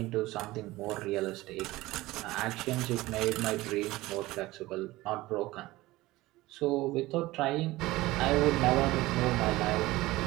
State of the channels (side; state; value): left; quieter; 18.7 dB